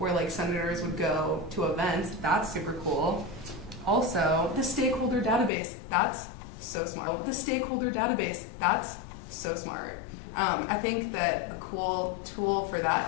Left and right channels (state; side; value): drops out; right; at 5.5 s